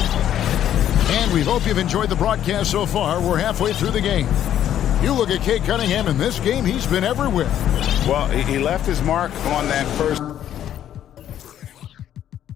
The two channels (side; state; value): right; quieter; 10.8 dB